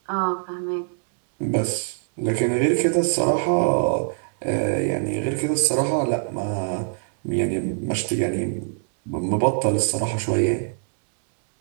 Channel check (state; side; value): silent; left; 63 dB below the other